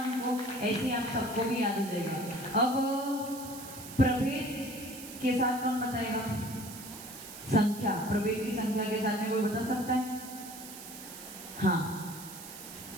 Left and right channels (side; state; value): right; noise; hiss, 13 dB below the sound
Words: हमको? ऐसे आप सबको भी याद हो जाएगा। अब प्रभेद के साथ कौन बताएगा? संख्या, प्रभेद की संख्या के साथ में कोई बता सकता है? हाँ,